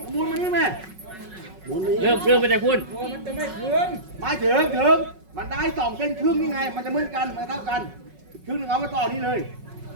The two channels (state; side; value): late; left; 5.4 ms